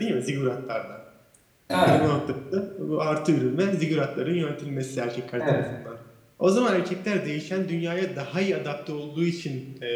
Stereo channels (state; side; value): identical; both; correlation 1.00